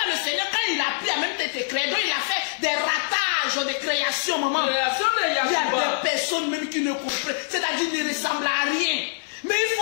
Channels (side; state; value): right; silent; 59 dB below the other